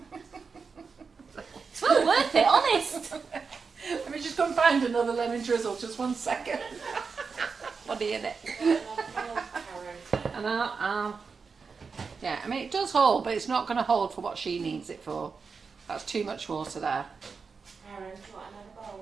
It's well worth it, honest. Let me just go and find another lemon drizzle. Just 1 second. Funny, innit? And yeah, I mean it does hold, but it's not going to hold for what she needs it for. That's too much water there. Aaron, do you want another bowl?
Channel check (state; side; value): quieter; left; 5.1 dB